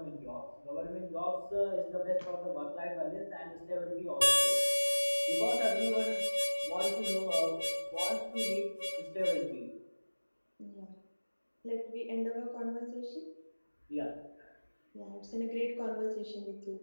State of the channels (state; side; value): inverted; both; correlation -1.00